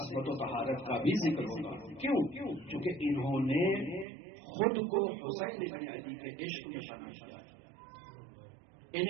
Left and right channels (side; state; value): left; drops out; at 4.0 s